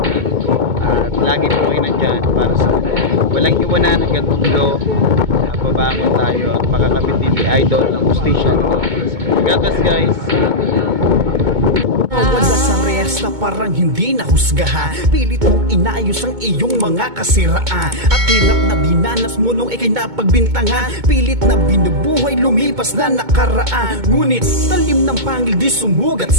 at lagi po kayo nandyan para sa walang iwanan hanggang dulo. Babangon tayo at makakabit din ni Idol ng justisya. God bless, guys. Wala sa resta parang hindi nahusgahan, pilit mong inayos ang iyong mga kasiraan, at hirap na dinanas mo nung ikay napagbintangan, pilit na binubuhay lumipas na nakaraan. Ngunit talim ng pangil di sumugat,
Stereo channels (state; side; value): late; left; 2.2 ms